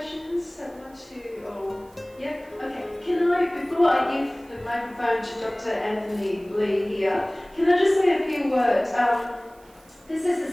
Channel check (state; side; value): noise; right; hiss, 29 dB below the sound